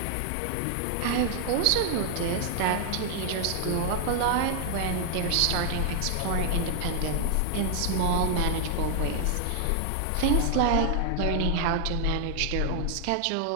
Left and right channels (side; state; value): both; different; correlation 0.00